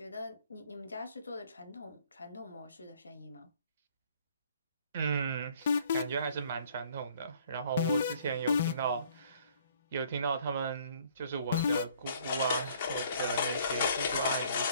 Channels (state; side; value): inverted; both; correlation -0.58